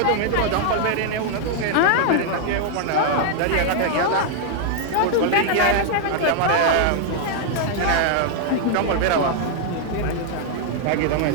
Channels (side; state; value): both; different; correlation 0.00